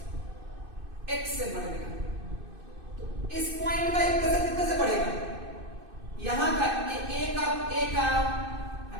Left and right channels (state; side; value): late; left; 2.5 ms